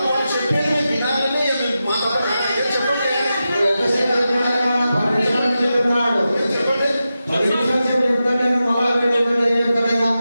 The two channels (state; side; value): inverted; both; correlation -0.91